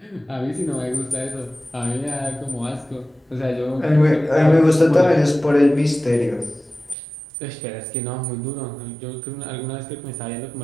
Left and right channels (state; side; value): drops out; left; at 7.0 s